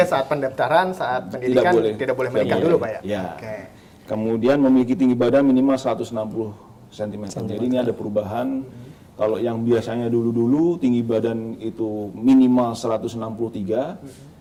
saat pendaftaran, saat pendidikan tidak boleh menikah dulu Pak ya? Ya. Kemudian memiliki tinggi badan minimal 160 cm. Jadi ini ada perubahan. Kalau yang biasanya dulu-dulu tinggi badan itu minimal 163,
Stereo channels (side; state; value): both; identical; correlation 1.00